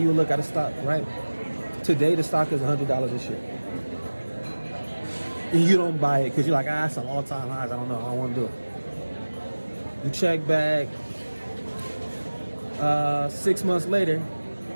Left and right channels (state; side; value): inverted; both; correlation -1.00